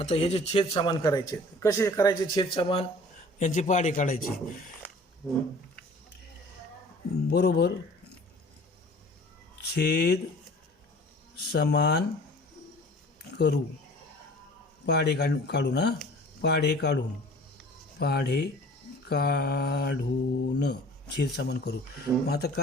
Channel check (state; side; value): normal; both; correlation 0.48